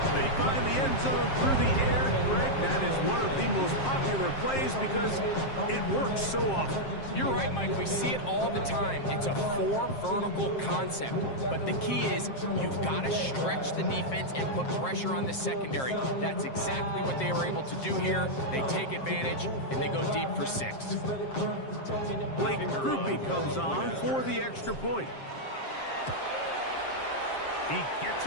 They find the end zone through the air. Greg, that is one of the most popular plays because it works so often. You're right, Mike. We see it all the time. It's a 4 vertical concept. But the key is you've got to stretch the defense and put pressure on the secondary. That's exactly what they were able to do here. They take advantage, and they go deep for 6. Blake Grupe comes on for the extra point. He gets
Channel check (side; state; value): right; late; 7.5 ms